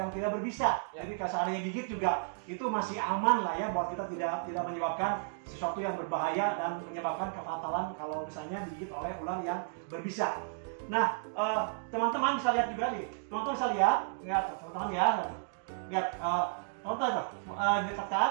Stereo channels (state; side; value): silent; left; digital silence